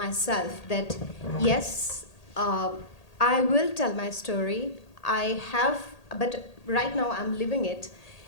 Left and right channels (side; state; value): right; late; 1.8 ms